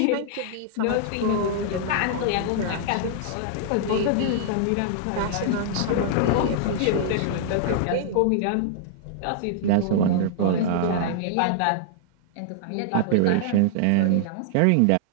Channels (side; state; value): both; different; correlation -0.01